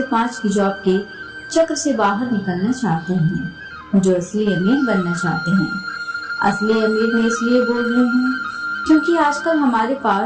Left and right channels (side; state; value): both; identical; correlation 1.00